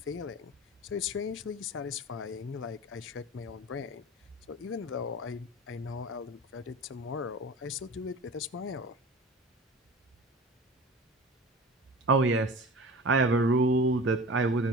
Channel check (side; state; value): both; normal; correlation 0.36